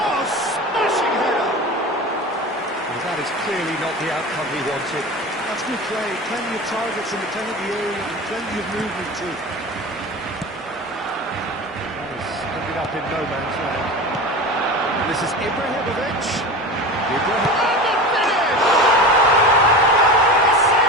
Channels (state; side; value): normal; both; correlation 0.30